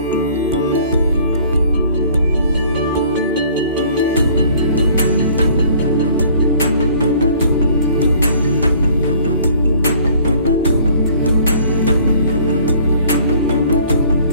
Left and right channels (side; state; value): both; inverted; correlation -0.54